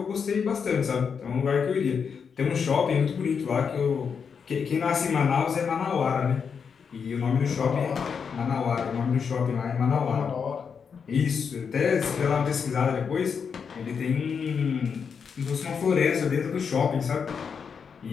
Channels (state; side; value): quieter; right; 6.4 dB